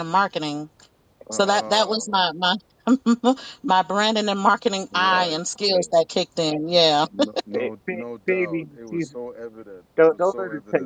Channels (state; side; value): identical; both; correlation 1.00